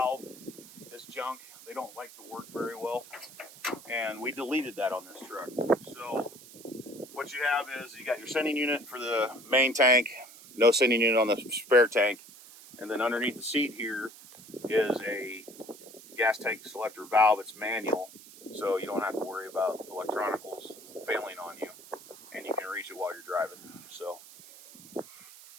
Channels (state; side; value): noise; right; hiss, 19 dB below the sound